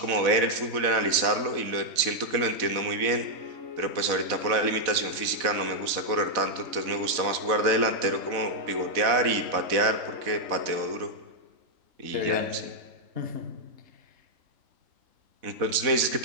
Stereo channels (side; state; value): left; late; 4.0 ms